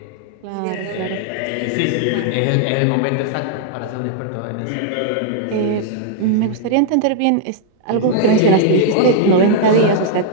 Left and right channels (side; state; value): both; different; correlation -0.01